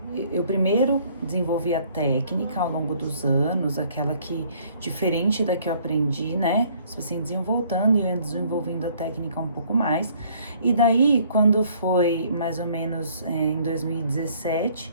eu primeiro desenvolvi a técnica ao longo dos anos, aquela que, diferente da que eu aprendi, né? Se assim, desenvolvendo e eu ia desenvolvendo a técnica um pouco mais. E daí, quando foi mais ou menos em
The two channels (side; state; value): both; inverted; correlation -0.60